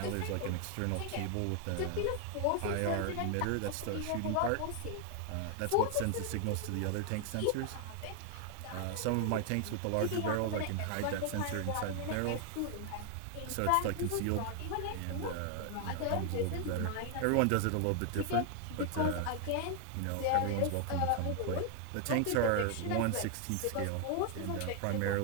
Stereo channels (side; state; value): both; different; correlation 0.00